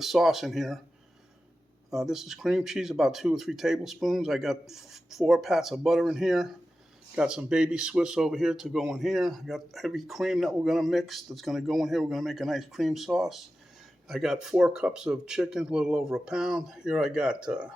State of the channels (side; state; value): both; normal; correlation 0.93